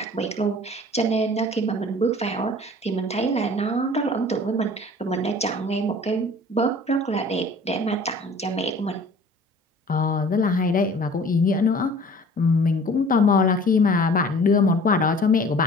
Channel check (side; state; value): both; normal; correlation 0.47